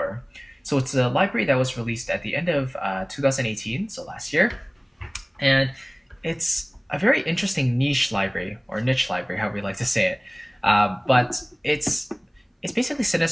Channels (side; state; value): both; identical; correlation 1.00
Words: So it's a library that was released at the end of 2018, so last year. And it's a very interesting niche library, or niche library, however we like to say it. But it's basically